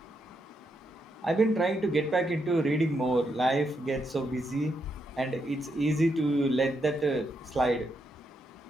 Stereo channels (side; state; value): both; normal; correlation 0.80